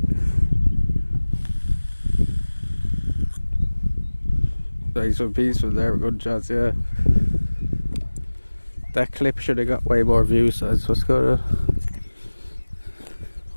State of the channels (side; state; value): both; inverted; correlation -1.00